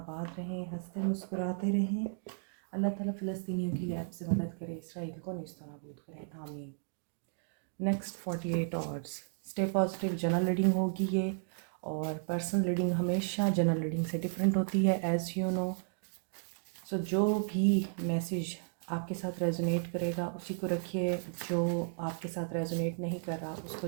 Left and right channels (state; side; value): silent; left; digital silence